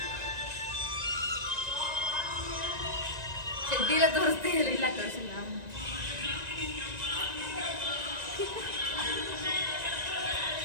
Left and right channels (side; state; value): left; late; 1.9 ms